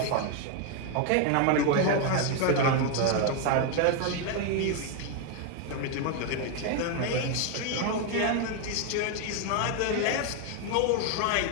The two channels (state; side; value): different; both; correlation 0.01